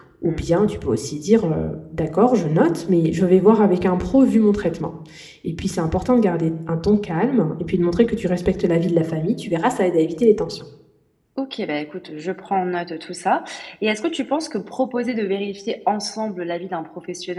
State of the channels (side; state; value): both; identical; correlation 1.00